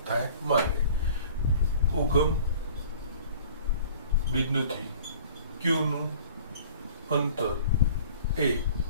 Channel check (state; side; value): inverted; both; correlation -0.47